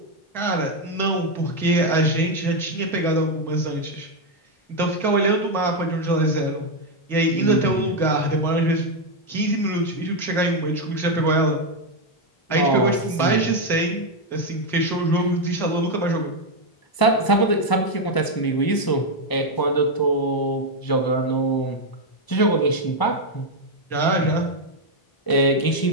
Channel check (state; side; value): late; right; 1.0 ms